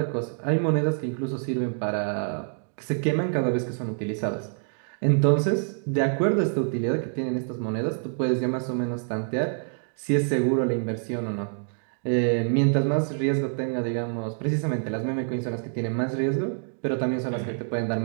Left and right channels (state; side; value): silent; left; 61 dB below the other